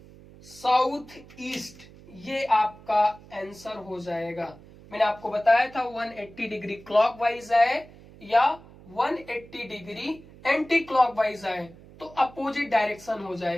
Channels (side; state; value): right; noise; hum, 21 dB below the sound